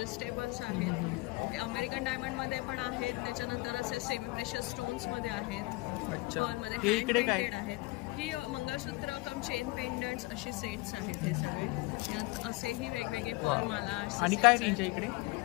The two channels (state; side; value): quieter; right; 23.3 dB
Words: आहेत. अमेरिकन डायमंड मध्ये पण आहेत. त्याच्यानंतर असे सेमी प्रेशियस स्टोन्स मध्ये आहेत. पर्ल मध्ये हँड पेंटेड आहेत. ही मंगळसूत्र कम चेन पेंडंट्स अशी सेट्स आहेत हे सगळे. यात असेही वेगवेगळे पर्ल माला. आणि काय रेंज आहे इकडे?